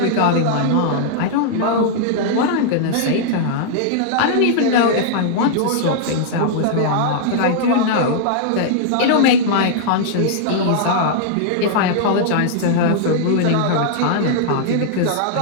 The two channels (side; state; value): both; different; correlation -0.01